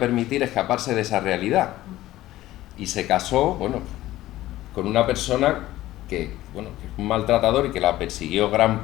escaparse de esa realidad. Y se casó, bueno, con una persona que, bueno, que es un maltratador y que la persiguió gran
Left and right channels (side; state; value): right; quieter; 15.6 dB